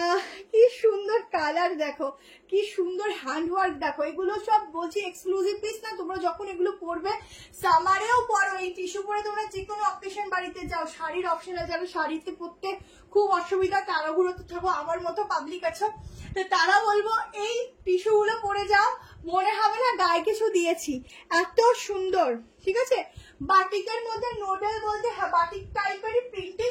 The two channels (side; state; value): both; identical; correlation 1.00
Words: কি সুন্দর কালার, দেখো কি সুন্দর হ্যান্ড ওয়ার্ক। দেখো এগুলো সব বলছি এক্সক্লুসিভ পিস না, তোমরা যখন এগুলো পরবে সামারেও পরো, এই টিস্যু পরে তোমরা যে কোনো অকেশন বাড়িতে যাও, শাড়ির অপশন আছে, যারা শাড়িতে পরতে খুব অসুবিধা তারাগুলোতে থাকো, আমার মতো পাবলিক আছো, তো তারা বলবো এই টিস্যু গুলো পরে যাও, মনে হবে না গায়ে কিছু দিয়েছি, এত সুন্দর, ঠিক আছে? বাটিকের মধ্যে নুডল বলতে, হ্যাঁ বাটিক টাইপেরই প্রিন্টিং